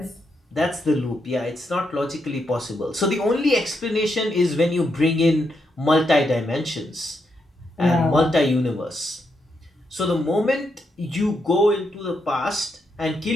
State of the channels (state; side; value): normal; both; correlation 0.81